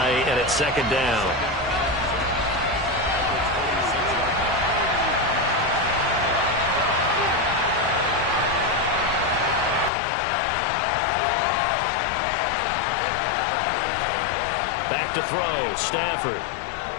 and it's 2nd down. Back to throw. Stafford.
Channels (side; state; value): right; drops out; at 9.9 s